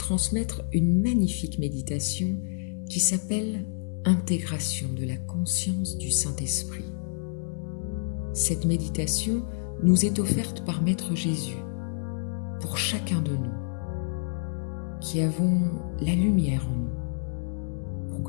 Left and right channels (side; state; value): right; silent; digital silence